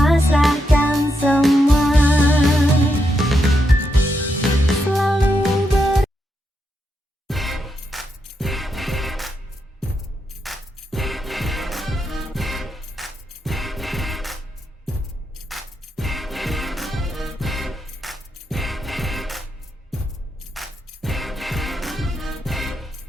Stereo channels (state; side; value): normal; both; correlation 0.83